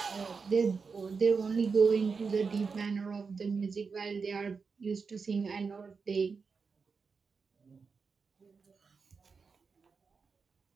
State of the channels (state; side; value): quieter; left; 5.1 dB